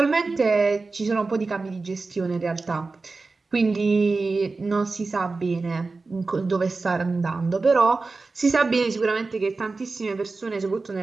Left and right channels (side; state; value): left; quieter; 3.8 dB